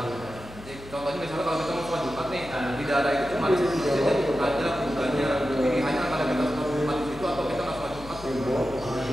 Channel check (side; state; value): left; noise; hum, 16 dB below the sound